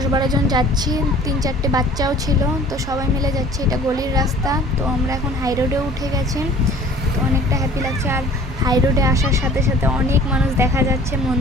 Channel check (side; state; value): both; normal; correlation 0.49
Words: জন যাচ্ছি, 3-4টে বাচ্চাও ছিল, তো সবাই মিলে যাচ্ছি। এটা গলির রাস্তা। তো আমরা এখন হাই রোডে উঠে গেছি, তো অনেকটা হ্যাপি লাগছে। আর হাই রোডে আসার সাথে সাথে অনেক মানুষ দেখা যাচ্ছে,